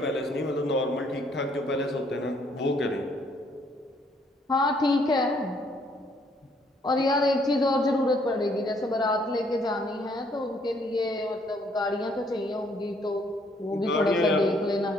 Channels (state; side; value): normal; both; correlation 0.67